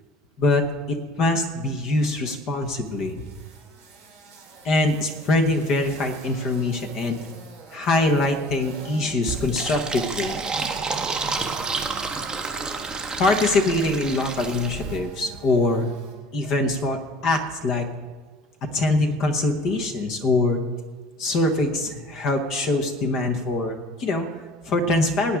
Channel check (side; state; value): both; normal; correlation 0.48